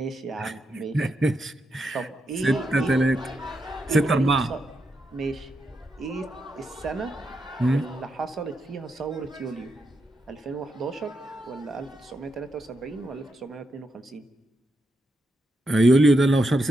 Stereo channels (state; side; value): normal; both; correlation 0.83